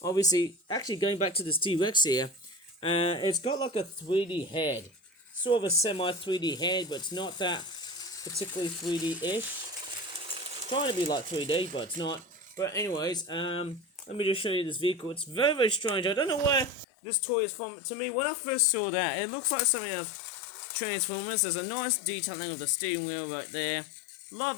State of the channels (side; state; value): right; drops out; at 16.9 s